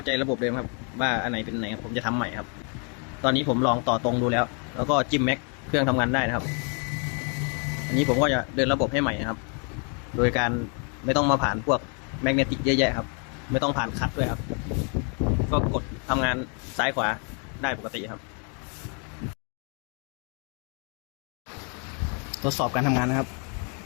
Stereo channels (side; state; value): right; quieter; 38.4 dB